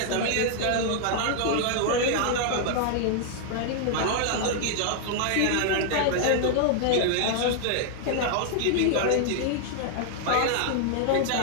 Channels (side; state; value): both; different; correlation 0.00